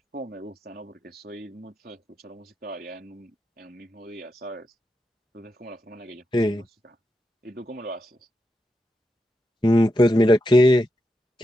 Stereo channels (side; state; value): both; normal; correlation 0.86